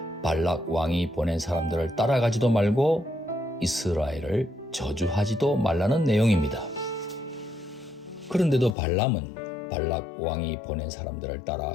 발락 왕이 보낸 사람들을 따라가지도 말고 이스라엘을 저주하지도 말라는 내용입니다. 그런데도 발람은 발락 왕이 보낸 사람들을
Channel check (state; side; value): drops out; right; at 8.8 s